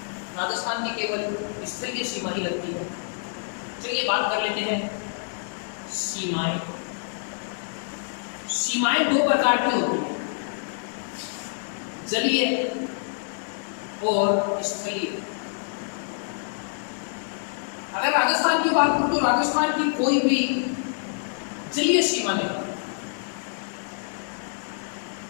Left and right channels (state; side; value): silent; right; digital silence